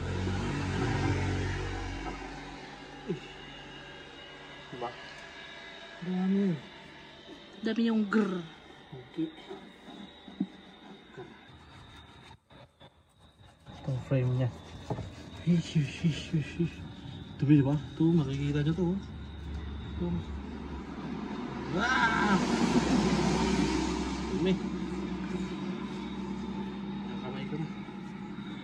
Diba? Dami. Dami yung grrr. Okay. Itong frame niya. Dumi diba? Ito, makikita nyo to. Ito. Ah! Dumi. Nakamay ko na.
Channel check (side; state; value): both; identical; correlation 1.00